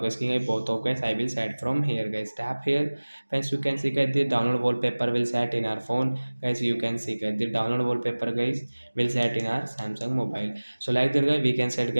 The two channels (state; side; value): inverted; both; correlation -1.00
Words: screen guys, both of guys I will set from here guys, tap here. Friends, you can see guys the download wallpaper will set in our phone guys, you can see guys the download wallpaper guys will set in our Samsung mobile. So like that guys we can set